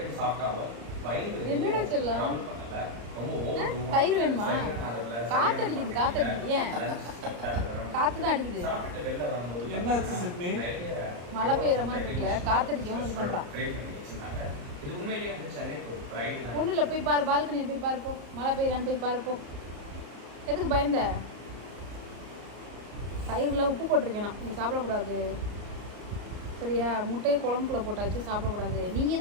சாப்பிட்டாலும் வயிறு என்னடா சொல்லலாம் ட்ரபிள் பண்ணல. ரொம்ப ஓவர் தயிர் வேணுமா? காத்தடிக்குது காத்தடிக்குது. ஏன் காத்து தான் அடிக்குது. சாப்பிட்டு வெளில வரும்போது என்னாச்சு சிட்னி? மழை பெய்யுற மாதிரி இருக்குல்ல, காத்தடிக்கும் இது பண்றான். ட்ரை பண்ணி வச்சிருந்தாங்க. இது உண்மையிலேயே வந்து சென்னைக்கு ஒரு ப்ரைட் தான். ஒன்றும் இல்லை, போய் பாரு, பால்கனியில் போய் பாரு, போ. மழை பெய்யலான்னு போய் பாரு, போ. எதுக்கு பயந்த? தயிரில் உப்பு போட்டிருக்கேன் நான், நீ சாப்பிடக்கூடாது சரியா? முட்டையை குழம்புக்குள்ள போட்டாச்சு, சாப்பிடக்கூடாது.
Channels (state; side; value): late; left; 34 ms